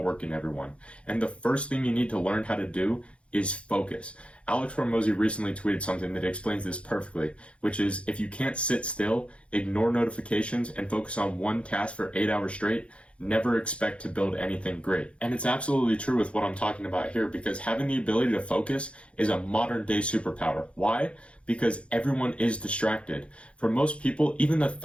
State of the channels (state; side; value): late; right; 0.060 ms